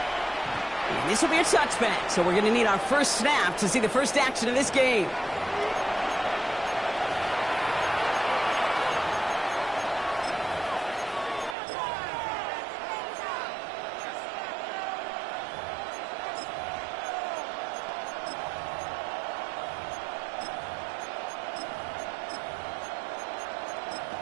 And this will be a touchback, so we're going to need our first snap to see the first action of this game.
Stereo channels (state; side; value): drops out; left; at 11.6 s